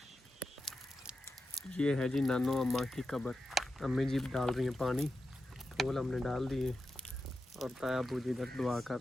ये है जी नानो अम्मा की कब्र। अम्मी जी डाल रही हैं पानी, फूल हमने डाल दिए और ताया अब्बू जी इधर दुआ कर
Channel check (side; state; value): both; normal; correlation 0.90